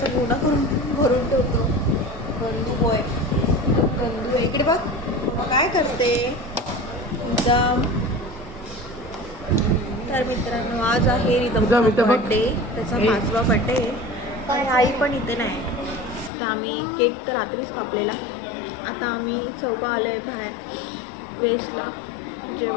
गोडा करून भरून ठेवतो. गंदू बॉय, गंदू. इकडे बघ मग काय करते एकदम. तर मित्रांनो, आज आहे रिदमचा बर्थडे, त्याचा 5वा बर्थडे आणि आई पण इथे नाही. तर आम्ही केक तर रात्रीच कापलेला. आता आम्ही चौघं आलो आहे बाहेर वेस्टला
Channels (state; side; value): drops out; right; at 16.3 s